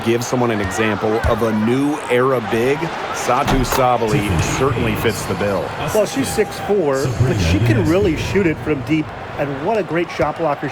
give someone an example of a new era big, Satu Sabali certainly fits the bill. Well, she's 6'4", but she can really shoot it from deep, and what a great shot blocker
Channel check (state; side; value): identical; both; correlation 1.00